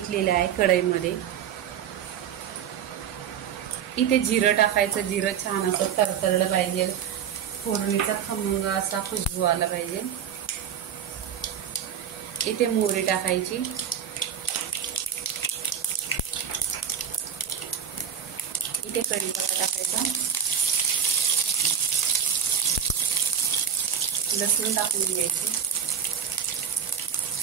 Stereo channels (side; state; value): left; quieter; 8.3 dB